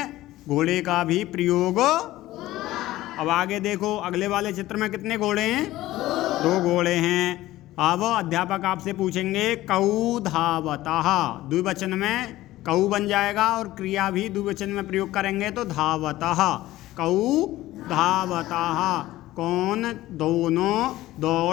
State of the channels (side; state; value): right; quieter; 16.1 dB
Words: घोड़े का भी प्रयोग। अब आगे देखो, अगले वाले चित्र में कितने घोड़े हैं? दो घोड़े हैं। अब अध्यापक आपसे पूछेंगे कौ धावतः, द्विवचन में कौ बन जाएगा और क्रिया भी द्विवचन में प्रयोग करेंगे तो धावतः। कौ धावतः, कौन दोनों